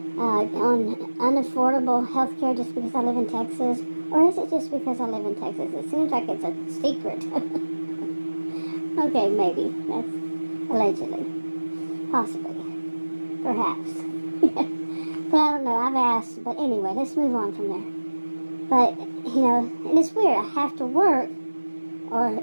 on unaffordable health care just because I live in Texas? Or is it just because I live in Texas? It seems like it's a secret. Okay, maybe. That's allegedly. Possibly. Perhaps. But I don't know. I've asked. But anyway, let's move on from there. But, and it's weird. I have to work or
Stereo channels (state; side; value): inverted; both; correlation -1.00